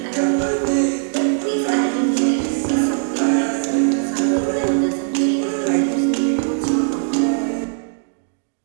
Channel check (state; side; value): silent; left; digital silence